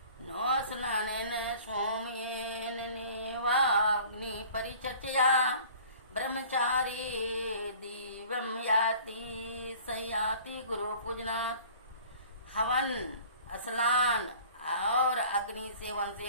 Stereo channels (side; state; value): both; inverted; correlation -0.48